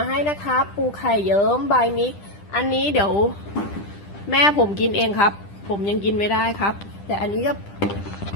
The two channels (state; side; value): late; right; 10 ms